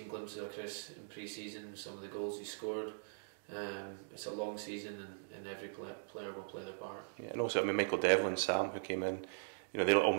glimpses of Chris in pre-season, some of the goals he scored. It's a long season, and every player will play their part. Yeah, and also, I mean, Michael Devlin, Sam, who came in, you know, they're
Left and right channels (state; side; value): silent; left; digital silence